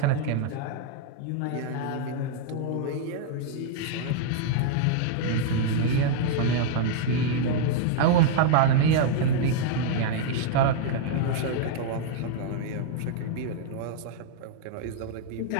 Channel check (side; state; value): both; different; correlation -0.01